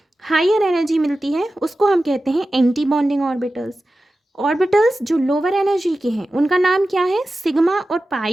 हायर एनर्जी मिलती है उसको हम कहते हैं एंटी बॉन्डिंग ऑर्बिटल्स। ऑर्बिटल्स जो लोअर एनर्जी के हैं उनका नाम क्या है, सिग्मा और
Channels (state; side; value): normal; both; correlation 0.94